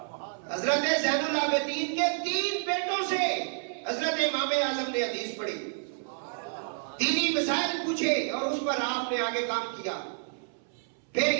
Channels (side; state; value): left; silent; 58 dB below the other